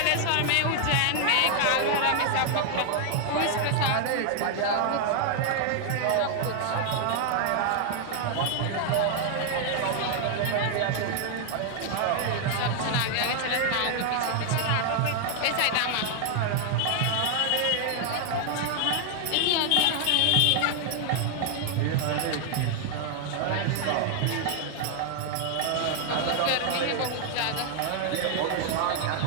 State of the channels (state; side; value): different; both; correlation 0.00